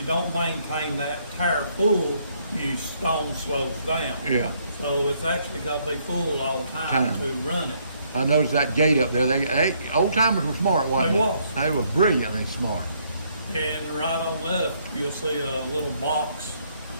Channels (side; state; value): both; inverted; correlation -0.70